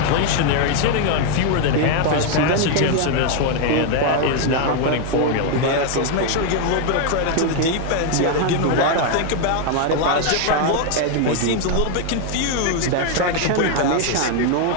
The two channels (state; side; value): different; both; correlation 0.01